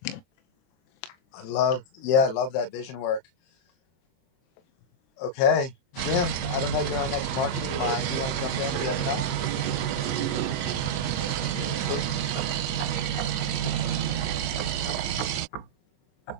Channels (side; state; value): right; late; 23 ms